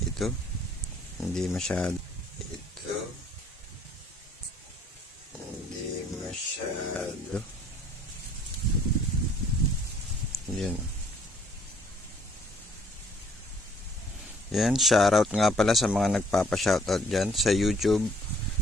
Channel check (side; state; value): both; normal; correlation 0.61